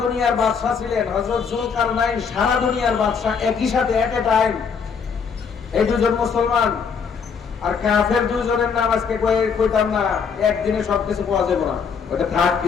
দুনিয়ার বাদশা ছিলেন। হযরত যুলকারনাইন সারা দুনিয়ার বাদশা, একই সাথে এট এ টাইম। এই 2 জন মুসলমান আর কাফের 2 জনের নাম আজকে কইতাম না, একদিনে সবকিছু পাওয়া যাবে না, ওটা থাক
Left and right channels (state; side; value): quieter; right; 6.1 dB